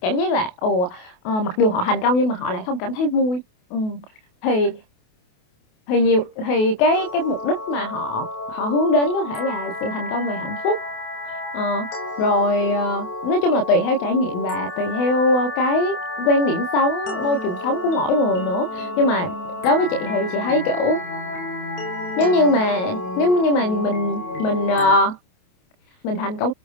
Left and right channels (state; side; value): late; right; 28 ms